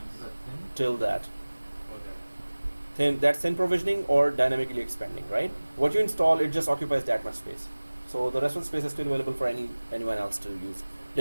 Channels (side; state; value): both; inverted; correlation -1.00